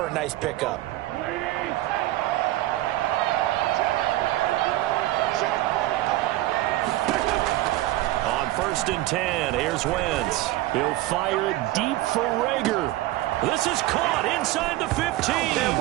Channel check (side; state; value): left; quieter; 16.6 dB